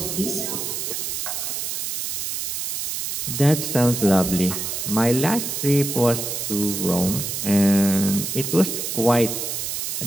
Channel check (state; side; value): noise; right; hiss, 3 dB below the sound